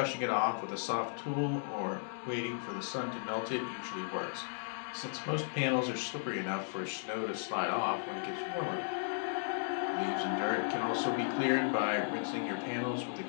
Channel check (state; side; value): silent; right; digital silence